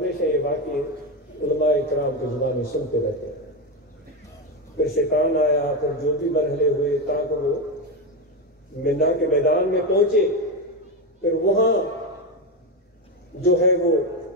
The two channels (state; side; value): normal; both; correlation 0.12